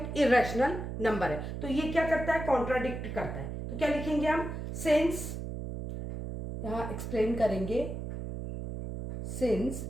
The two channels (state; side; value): noise; right; hum, 6 dB below the sound